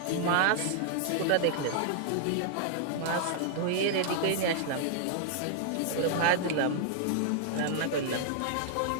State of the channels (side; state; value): both; different; correlation -0.01